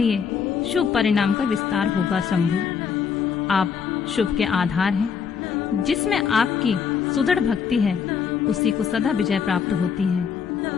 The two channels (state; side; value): quieter; right; 6.7 dB